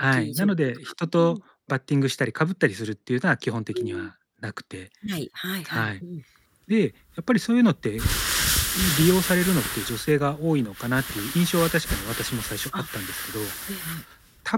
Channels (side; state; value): both; identical; correlation 1.00